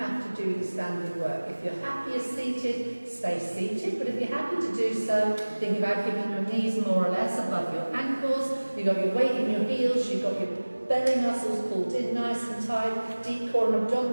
have to do the standing work. If you're happier seated, stay seated. But if you're happy to do so, think about keeping your knees more or less above your ankles. You've got your weight in your heels. You've got your belly muscles pulled in nice and tight. Deep core and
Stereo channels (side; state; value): both; inverted; correlation -1.00